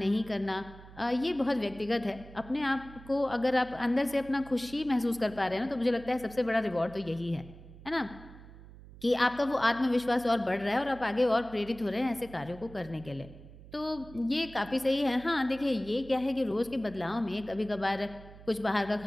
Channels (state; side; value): noise; right; hum, 18 dB below the sound